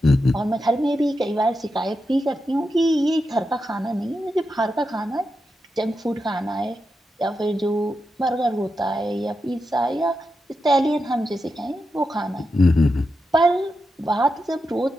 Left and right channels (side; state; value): both; normal; correlation 0.88